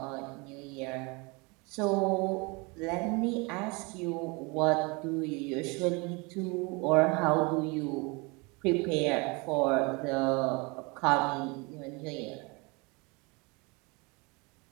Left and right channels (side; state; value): left; quieter; 28.1 dB